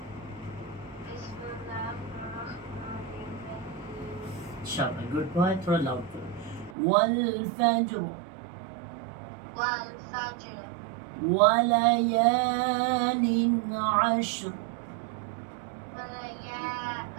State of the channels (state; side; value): drops out; left; at 6.8 s